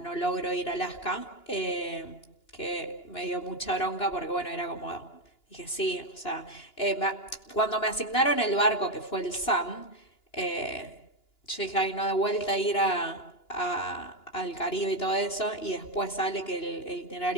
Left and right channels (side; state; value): right; late; 2.9 ms